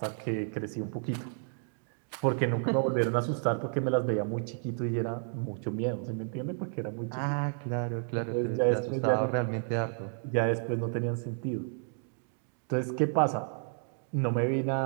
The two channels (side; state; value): left; silent; 57 dB below the other